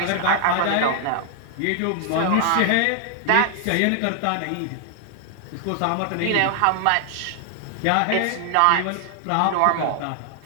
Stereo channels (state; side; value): different; both; correlation 0.00